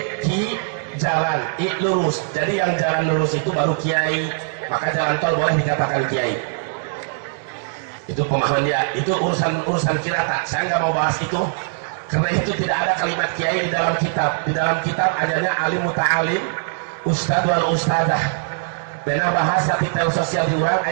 ki jalan, i lurus. Jadi yang jalan lurus itu baru kiai. Maka jalan tol boleh dikatakan kiai. Itu pemahaman dia. Itu urusan kirata. Saya nggak mau bahas itu karena itu tidak ada kalimat kiai di dalam kitab. Di dalam kitab adanya alim muta'alim, ustad wal ustadah. Bena bahasa titel sosial diurang,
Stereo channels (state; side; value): silent; left; 65 dB below the other